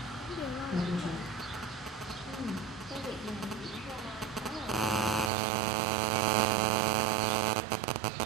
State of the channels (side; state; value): left; drops out; at 5.3 s